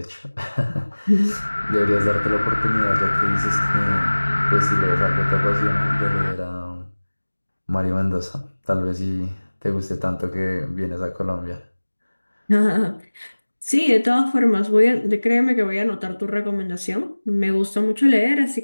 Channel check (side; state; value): both; inverted; correlation -1.00